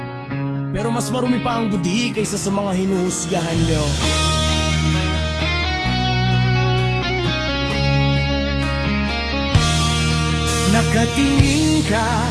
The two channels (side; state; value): both; identical; correlation 1.00